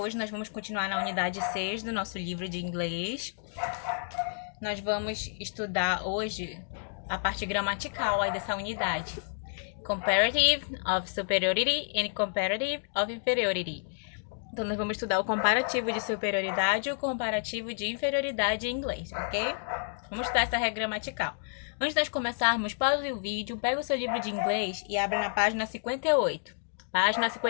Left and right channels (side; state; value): right; silent; digital silence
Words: nós vamos continuar na unidade 6 do nosso livro de inglês. Nós vamos estudar hoje a parte gramatical aí dessa unidade. Comparative of superiority and comparative of inferiority. Então nós vamos estudar o comparativo de superioridade e o comparativo de inferioridade em inglês, ok? Vamos estudar essa regra gramatical. Antes de nós começarmos, pause o vídeo, pega o seu livro de inglês e abre na página 58. Página